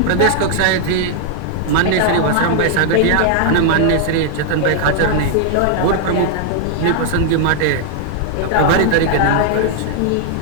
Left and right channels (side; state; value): both; different; correlation 0.00